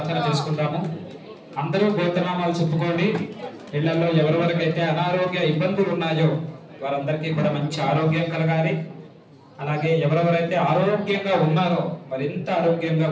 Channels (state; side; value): identical; both; correlation 1.00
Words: చేసుకుంటాము. అందరూ గోత్రనామాలు చెప్పుకోండి. ఇళ్లలో ఎవరెవరికైతే అనారోగ్య ఇబ్బందులు ఉన్నాయో వారందరికీ కూడా మంచి ఆరోగ్యం కలగాలి. అలాగే ఎవరెవరైతే ఆరోగ్యంగా ఉన్నారో మరింత ఆరోగ్యంగా